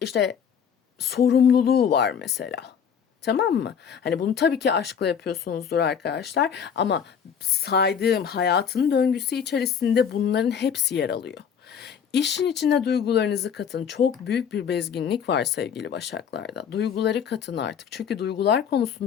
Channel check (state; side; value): quieter; right; 7.5 dB